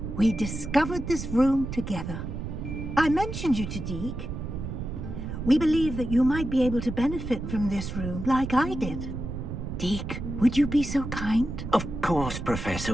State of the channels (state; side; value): noise; right; rumble, 6 dB below the sound